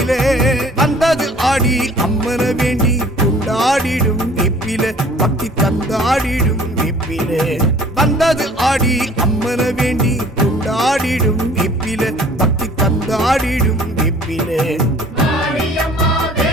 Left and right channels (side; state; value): both; normal; correlation 0.51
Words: வந்தது ஆடி அம்மன வேண்டி கொண்டாடிடும் வெப்பில பக்தி தந்தாடிடும் வெப்பில வந்தது ஆடி அம்மன வேண்டி கொண்டாடிடும் வெப்பில பக்தி தந்தாடிடும் வெப்பில மாரியம்மா